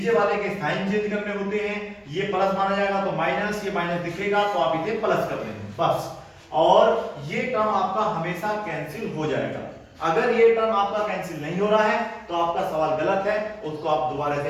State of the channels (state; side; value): identical; both; correlation 1.00